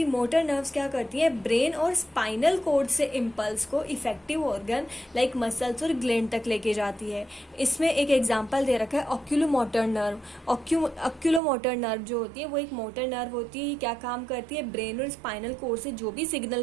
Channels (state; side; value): drops out; left; at 11.4 s